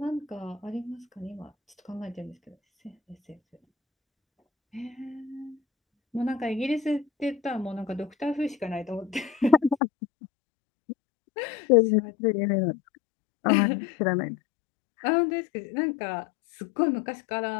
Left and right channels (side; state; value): right; drops out; at 9.8 s